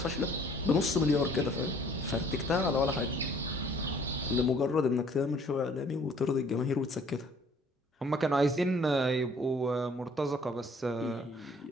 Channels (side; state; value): both; normal; correlation 0.57